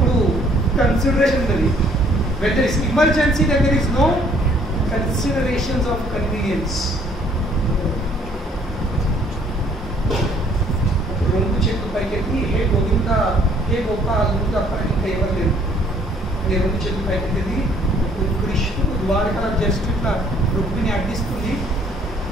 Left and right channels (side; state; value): both; normal; correlation 0.61